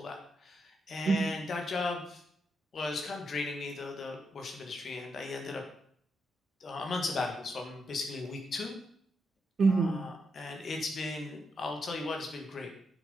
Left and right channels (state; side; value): normal; both; correlation 0.82